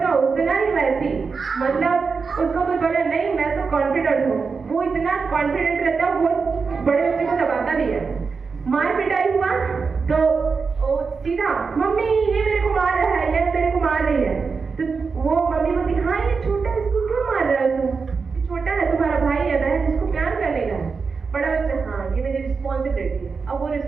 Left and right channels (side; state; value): left; quieter; 5.0 dB